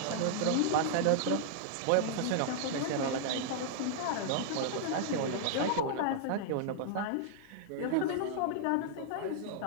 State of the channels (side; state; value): both; different; correlation -0.01